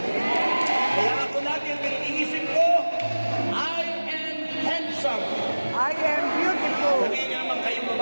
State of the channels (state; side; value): inverted; both; correlation -1.00